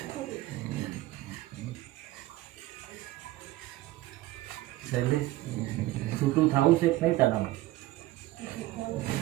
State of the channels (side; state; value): left; quieter; 17.2 dB